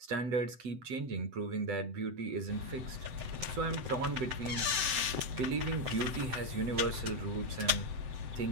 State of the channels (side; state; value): left; late; 7.8 ms